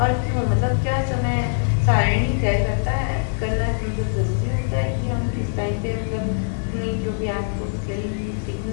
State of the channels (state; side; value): silent; right; 64 dB below the other